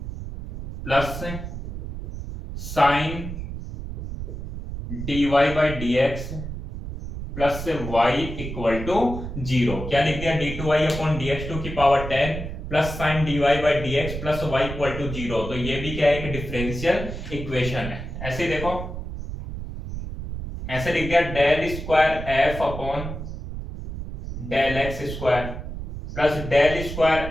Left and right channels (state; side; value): noise; right; rumble, 7 dB below the sound